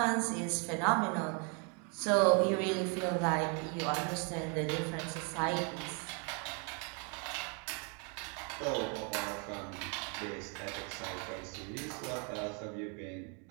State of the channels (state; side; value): quieter; left; 35.9 dB